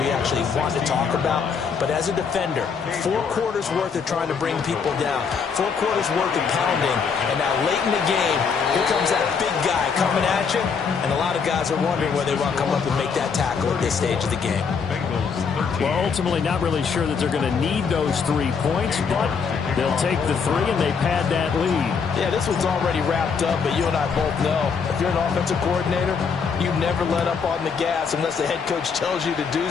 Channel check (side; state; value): right; quieter; 5.9 dB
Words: actually want to talk about, but as a defender, 4 quarters worth of trying to bring people down, 4 quarters worth of pounding, and now late in the game, here comes that big guy coming at you, and a lot of guys are wondering whether they want to come up and make that tackle at this stage of the game. Well, ultimately not really sure that they're going to need those 3 points, but they'll take the 3 and they pad that lead. Yeah, this one's already wrapped up, but you and I both know if you're an offensive coordinator, you never let up on the gas unless the head coach tells you to do